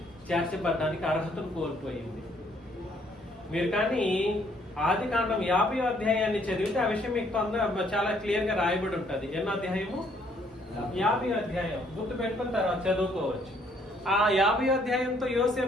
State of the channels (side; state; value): both; normal; correlation 0.66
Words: చేర్చబడడానికి అర్హతను కోల్పోయింది. మీరు కానీ ఆదికాండం 50వ అధ్యాయాన్ని చదివితే ఆ విషయం మీకు చాలా క్లియర్ గా రాయబడి ఉంటుంది. ఎన్నో అధ్యాయము? 50వ అధ్యాయం. గుర్తు పెట్టుకున్న తర్వాత చదువుకోవచ్చు. ఆ 50వ అధ్యాయంతో